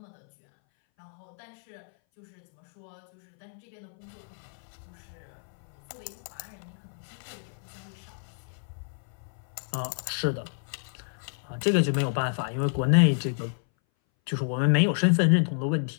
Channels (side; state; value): right; silent; 58 dB below the other